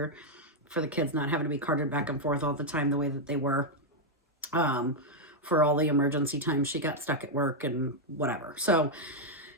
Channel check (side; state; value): both; normal; correlation -0.01